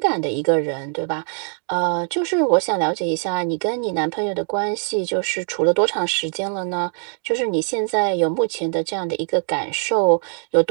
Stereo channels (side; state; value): left; silent; 60 dB below the other